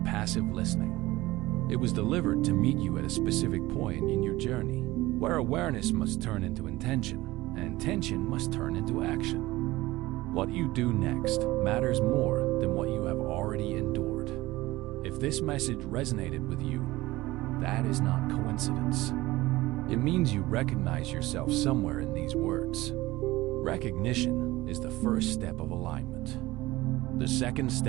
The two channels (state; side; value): quieter; left; 18.7 dB